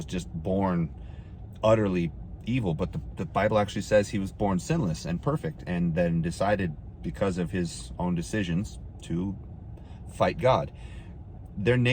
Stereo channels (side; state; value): both; identical; correlation 1.00